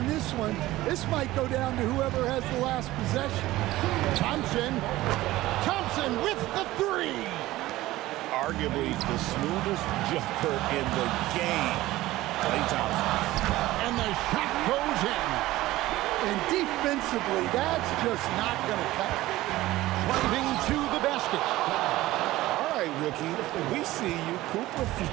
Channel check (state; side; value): quieter; left; 17.0 dB